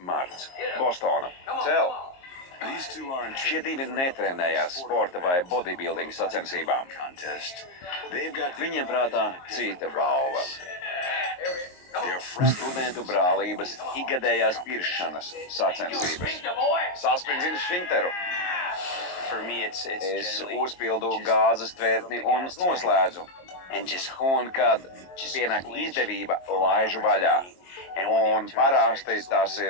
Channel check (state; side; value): late; right; 22 ms